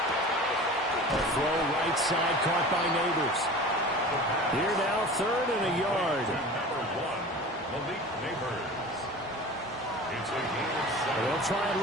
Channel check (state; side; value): normal; both; correlation 0.37